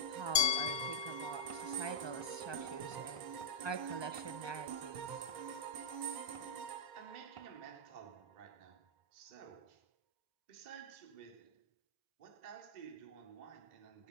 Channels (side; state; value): left; late; 1.2 ms